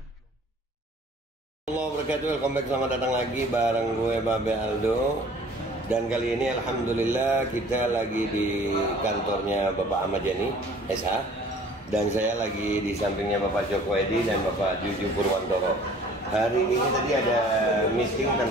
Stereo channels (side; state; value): both; normal; correlation 0.51